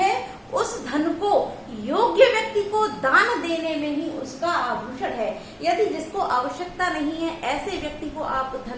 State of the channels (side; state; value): both; identical; correlation 1.00